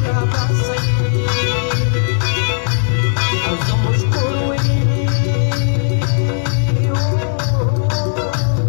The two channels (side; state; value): right; silent; digital silence